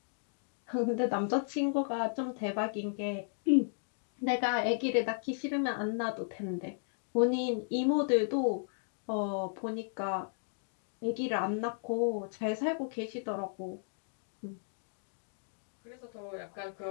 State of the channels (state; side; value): silent; right; digital silence